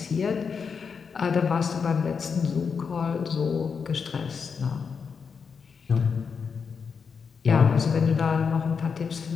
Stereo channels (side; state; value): right; quieter; 5.9 dB